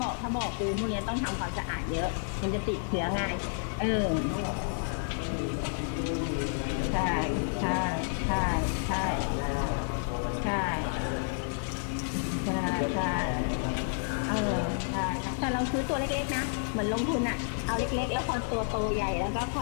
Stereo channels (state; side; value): silent; right; digital silence